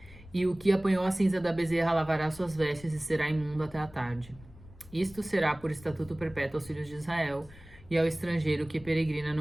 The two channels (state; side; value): noise; left; rumble, 21 dB below the sound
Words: E o que apanhou a cinza da bezerra lavará suas vestes e será imundo até a tarde. Isto será por estatuto perpétuo aos filhos de Israel e ao estrangeiro que peregrina